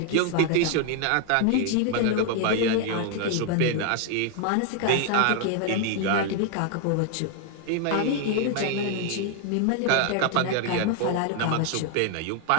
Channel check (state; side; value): different; both; correlation 0.00